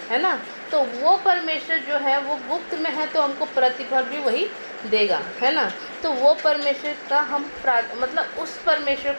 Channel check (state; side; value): inverted; both; correlation -1.00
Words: है ना। तो वो परमेश्वर जो है वो गुप्त में है, तो हमको प्रतिफल भी वही देगा, है ना। तो वो परमेश्वर का हम मतलब उस परमेश्वर